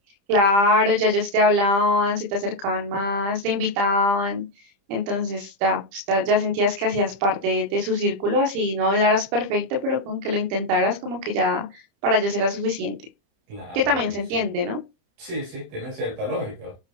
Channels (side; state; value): left; late; 30 ms